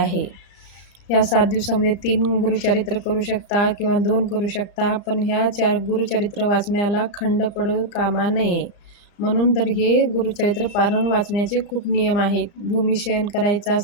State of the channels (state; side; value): late; right; 34 ms